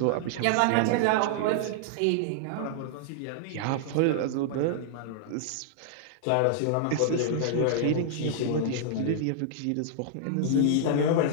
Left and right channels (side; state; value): both; different; correlation -0.01